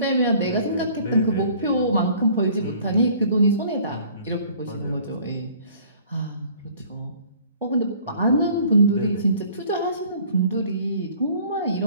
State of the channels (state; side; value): inverted; both; correlation -0.53